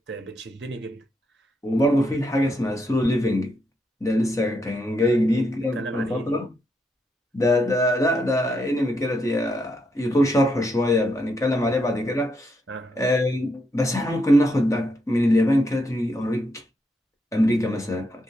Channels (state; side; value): normal; both; correlation 0.79